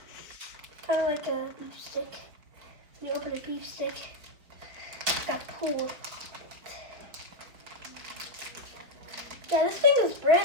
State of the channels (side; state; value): left; late; 4.8 ms